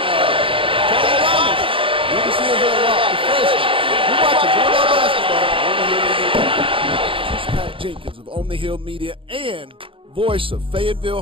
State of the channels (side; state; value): left; late; 0.26 ms